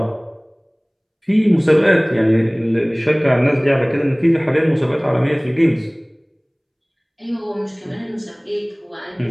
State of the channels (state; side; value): identical; both; correlation 1.00